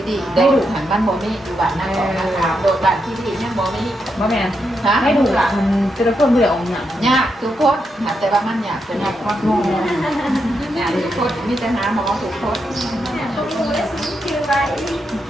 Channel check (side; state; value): both; normal; correlation 0.83